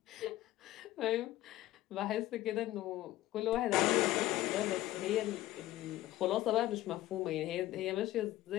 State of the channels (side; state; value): right; quieter; 15.5 dB